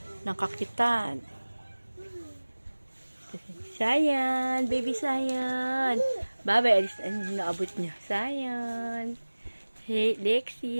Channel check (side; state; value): both; inverted; correlation -1.00